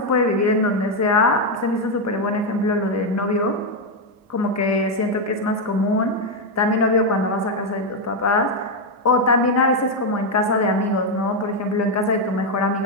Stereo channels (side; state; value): both; normal; correlation 0.03